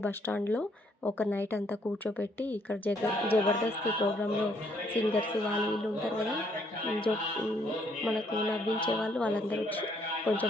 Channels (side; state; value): both; normal; correlation 0.68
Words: బస్టాండ్లో ఒక నైట్ అంతా కూర్చోబెట్టి ఇక్కడ జబర్దస్త్ ప్రోగ్రాంలో సింగర్స్ వాళ్ళు వీళ్ళు ఉంటారు కదా, మనకు నవ్వించే వాళ్ళందరూ వచ్చి కొంచెం